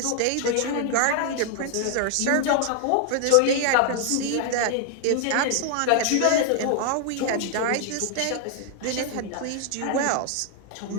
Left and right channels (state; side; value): different; both; correlation 0.00